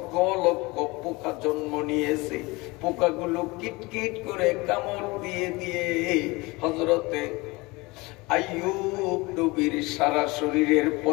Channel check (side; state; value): right; quieter; 23.9 dB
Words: লক্ষ পোকা জন্ম নিয়েছে। পোকাগুলো কিটকিট করে কামড় দিয়ে দিয়ে হযরতে আইয়ুব নবীর সারা শরীরের